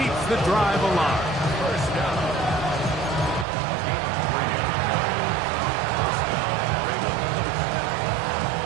keeps the drive alive. First down.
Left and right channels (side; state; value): left; drops out; at 3.5 s